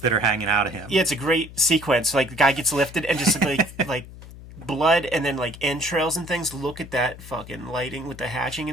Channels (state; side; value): noise; left; hum, 16 dB below the sound